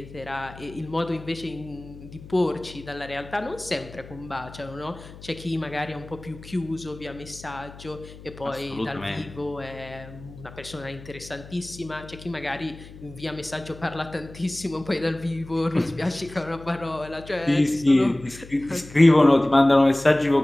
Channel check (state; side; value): noise; left; hum, 17 dB below the sound